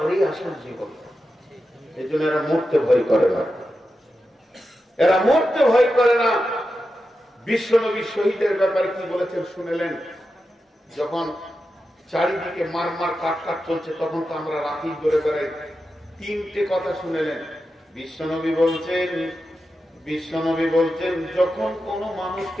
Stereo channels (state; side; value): normal; both; correlation 0.90